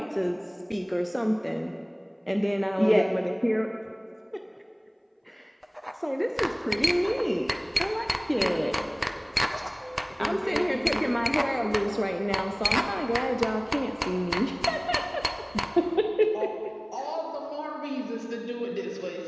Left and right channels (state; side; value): identical; both; correlation 1.00